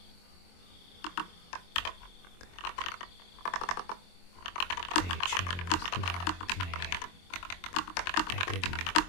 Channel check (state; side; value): late; right; 23 ms